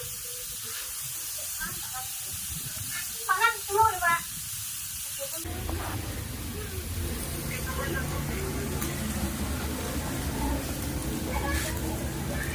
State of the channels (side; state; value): both; identical; correlation 1.00